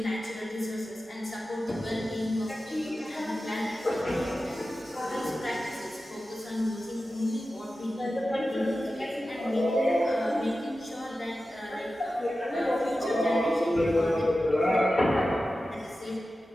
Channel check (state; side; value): normal; both; correlation 0.93